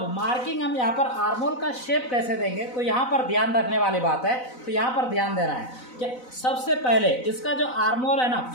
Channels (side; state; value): right; late; 4.0 ms